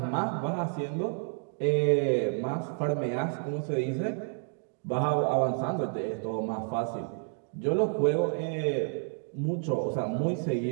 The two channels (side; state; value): left; silent; 58 dB below the other